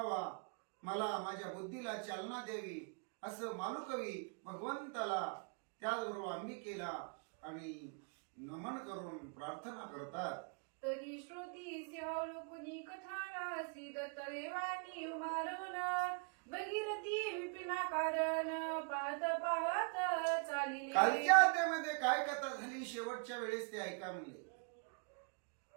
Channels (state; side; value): quieter; left; 38.1 dB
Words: मला माझ्या बुद्धीला चालना द्यावी, असं मालुकवी भगवंताला त्याचबरोबर अंबिकेला आणि नमन करून प्रार्थना करतात. तरी श्रोती सिंहावलोकनी कथाना श्री दत्त देवानी उमारवण भगीरथी विपिना कारण पाहत पाहत चालिले. कालच्या अध्यायामध्ये काय कथा झाली शेवटच्या वेळेस ते ऐका म्हणले.